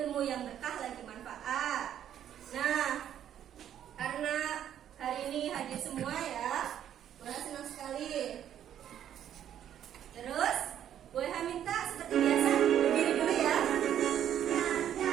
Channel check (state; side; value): quieter; left; 10.3 dB